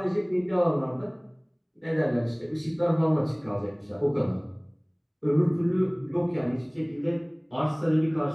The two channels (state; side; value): identical; both; correlation 1.00